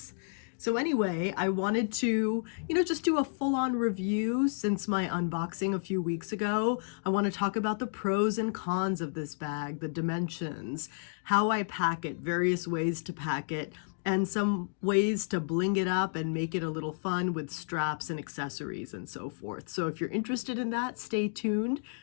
So anyway, I wanted to, just do a full-on review since my unboxing a few weeks ago. I want to talk about the pros and cons of this bag, the dimensions, how I pack it, various ways to pack it, and some ways to bling it up and make it a little fun with straps and accessories and so forth. So if you're interested in that, stay tuned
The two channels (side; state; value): right; silent; digital silence